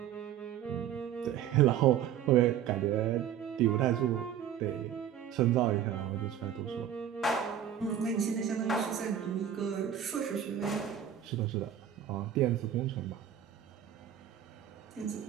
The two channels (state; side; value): quieter; left; 9.8 dB